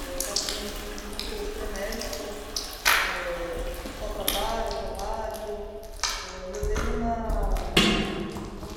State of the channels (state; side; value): identical; both; correlation 1.00